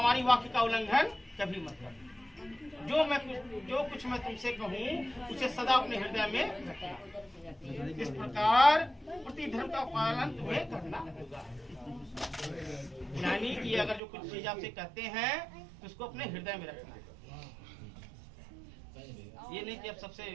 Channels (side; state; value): left; drops out; at 14.0 s